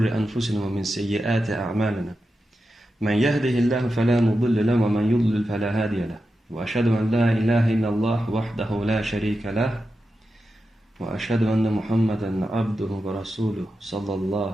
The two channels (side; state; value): both; normal; correlation 0.90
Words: أنفسنا ومن سيئات أعمالنا من يهده الله فلا مضل له ومن يضلل فلا هادي له وأشهد أن لا إله إلا الله وحده لا شريك له وأشهد أن محمدا عبده ورسوله صلى